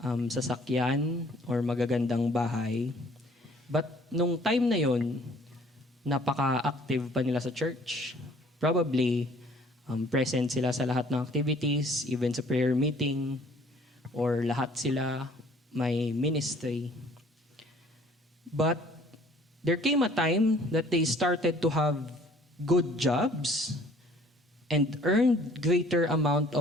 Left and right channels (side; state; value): both; normal; correlation 0.56